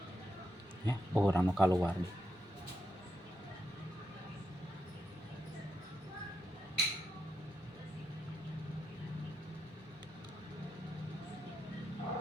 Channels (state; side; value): normal; both; correlation 0.83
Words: Ya, orang nu keluar.